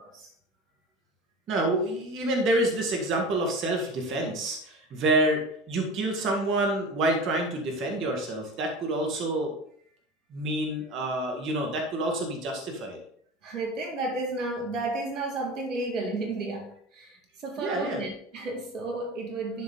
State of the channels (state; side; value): normal; both; correlation 0.32